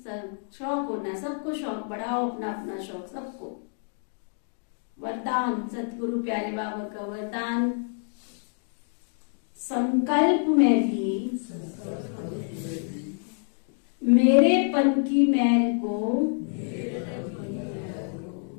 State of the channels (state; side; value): silent; right; 60 dB below the other